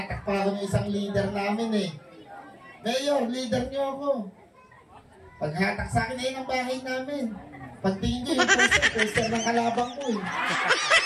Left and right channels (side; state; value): both; identical; correlation 1.00